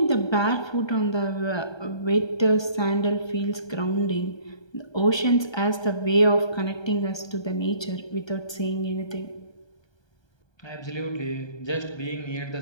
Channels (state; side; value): late; right; 1.3 ms